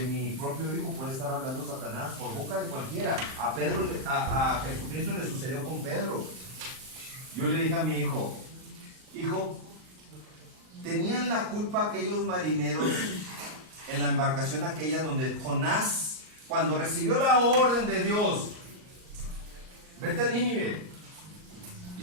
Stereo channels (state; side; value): late; left; 38 ms